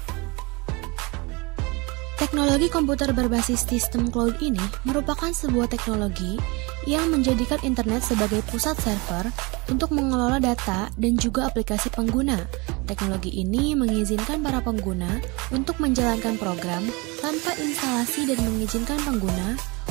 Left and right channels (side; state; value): left; quieter; 26.7 dB